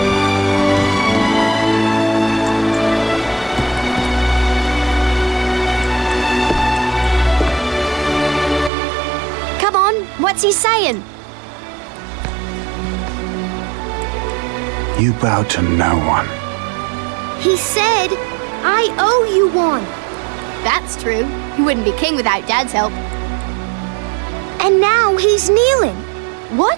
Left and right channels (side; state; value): left; drops out; at 8.7 s